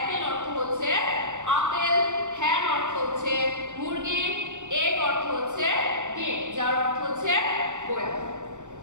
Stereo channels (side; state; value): left; late; 0.85 ms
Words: অর্থ হচ্ছে আপেল, হ্যান অর্থ হচ্ছে মুরগি, এগ অর্থ হচ্ছে ডিম, যার অর্থ হচ্ছে বয়াম।